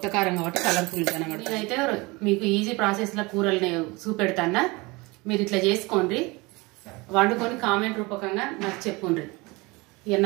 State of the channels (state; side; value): quieter; left; 24.6 dB